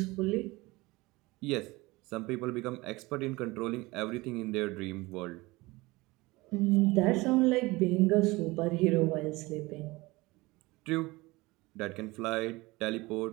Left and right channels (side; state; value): left; quieter; 22.0 dB